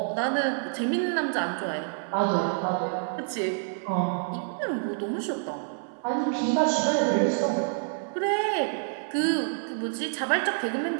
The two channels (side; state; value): left; silent; 60 dB below the other